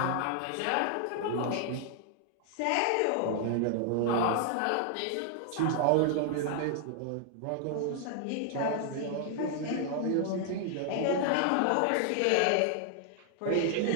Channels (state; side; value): different; both; correlation 0.00